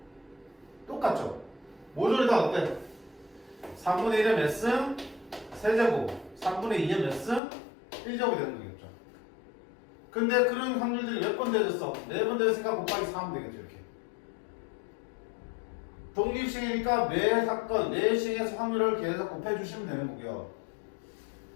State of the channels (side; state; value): right; drops out; at 7.4 s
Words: 똑같죠? 모조리 다 어때? 3분의 1의 몇 승? 세제곱. 3분의 2의 몇 승? 1제곱이 되는 거겠죠. 근데 그런 확률들이 몇 번 되어졌어? 4번 되었으니까 곱하기 4 하면 되겠죠, 이렇게. 독립시행이니까 매 사건, 매 시행에서 확률을 계속 곱해주시면 되는 거고요.